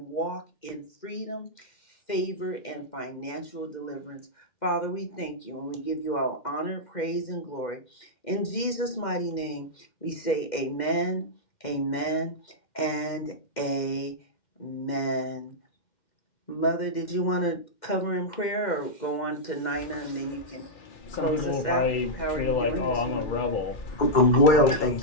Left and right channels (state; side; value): late; right; 2.1 ms